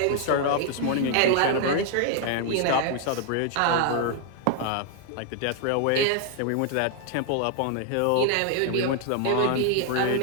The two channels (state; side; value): different; both; correlation 0.00